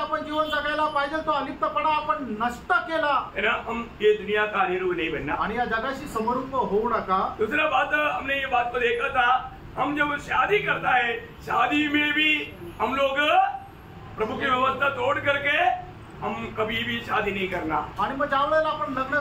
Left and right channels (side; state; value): both; identical; correlation 1.00